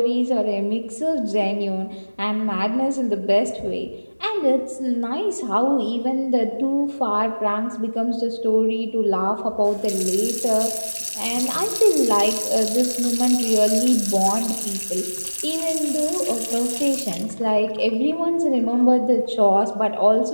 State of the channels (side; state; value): both; inverted; correlation -1.00